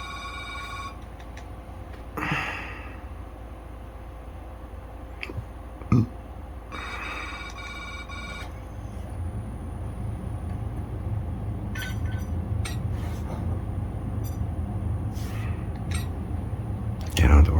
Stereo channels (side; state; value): both; identical; correlation 1.00